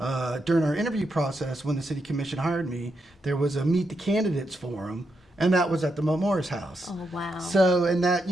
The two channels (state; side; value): normal; both; correlation 0.83